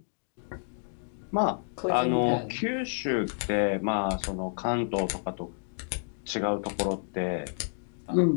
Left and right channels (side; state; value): right; silent; digital silence